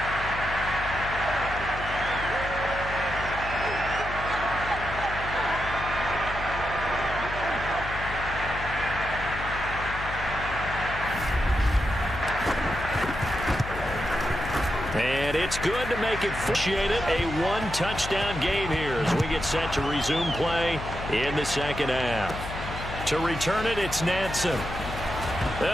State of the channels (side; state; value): left; noise; hum, 9 dB below the sound